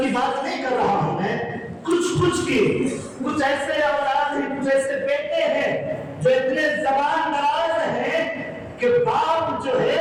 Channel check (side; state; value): both; identical; correlation 1.00